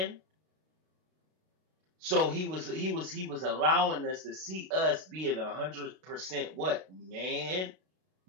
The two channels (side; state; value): left; late; 32 ms